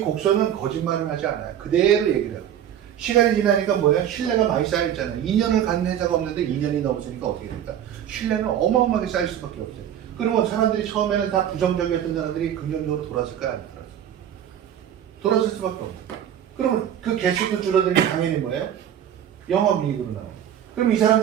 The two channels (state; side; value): quieter; left; 10.1 dB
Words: 거짓말을 하지 않아요. 그대로 얘기를 하고. 시간이 지나니까 뭐야? 신뢰가 많이 쌓였잖아요. 2년을 갖는 회사가 없는데 2년이 넘었으니까 어떻게 됩니까? 신뢰는 어마어마하게 쌓일 수밖에 없어요. 그러면 사람들이 처음에는 다 부정적이었던 사람들이 긍정적으로 돌아설까요? 안 돌아서? 돌아설 수밖에 없어요. 그러면 그 개수도 줄어들면 당연히 뭐예요? 영업이익으로 나와요. 그럼 이